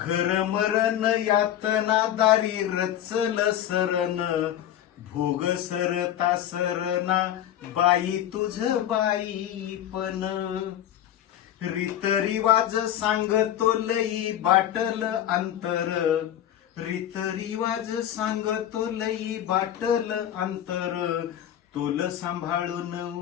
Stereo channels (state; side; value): quieter; right; 11.3 dB